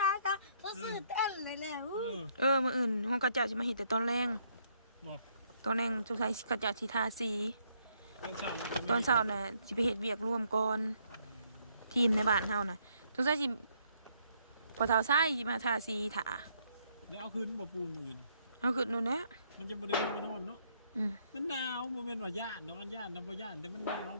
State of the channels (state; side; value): inverted; both; correlation -0.70